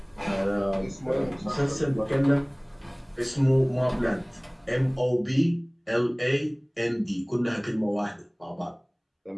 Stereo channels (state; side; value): identical; both; correlation 1.00